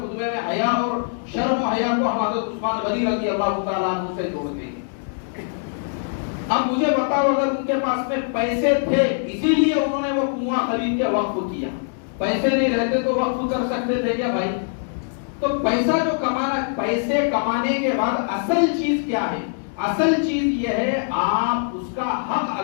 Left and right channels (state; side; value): silent; right; digital silence